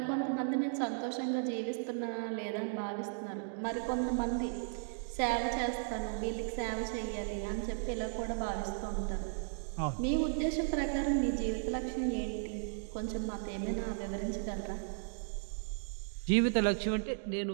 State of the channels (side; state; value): left; silent; digital silence